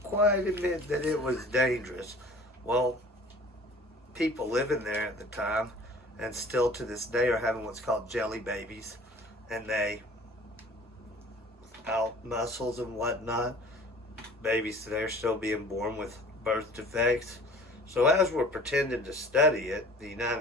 quite admit that it was dangerous. Well, people living there at the time, and still to this day, are having what's called jelly babies, and they, without muscles and whatnot, babies today are still being born with birth defects. So as we're pretending to study it, the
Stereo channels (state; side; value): normal; both; correlation 0.47